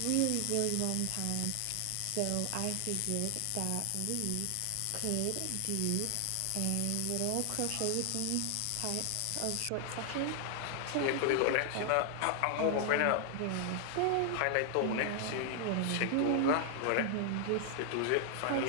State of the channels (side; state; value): both; different; correlation 0.00